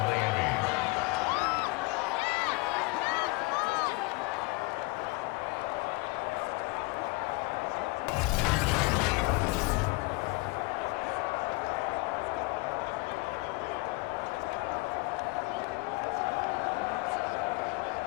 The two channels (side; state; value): right; quieter; 25.0 dB